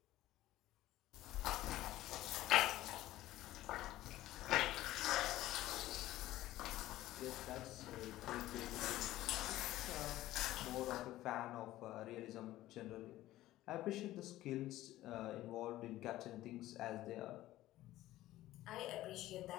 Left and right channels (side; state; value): right; quieter; 15.5 dB